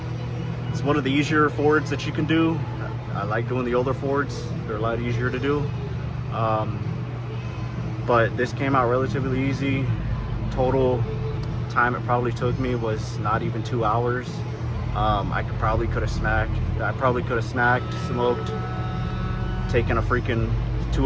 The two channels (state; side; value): identical; both; correlation 1.00